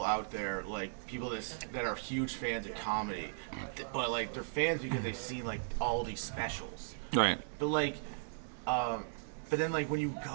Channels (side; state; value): left; silent; 53 dB below the other